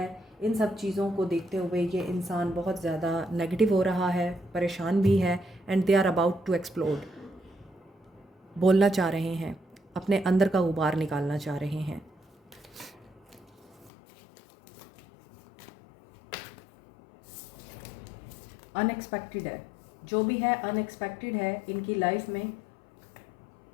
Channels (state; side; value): drops out; right; at 13.9 s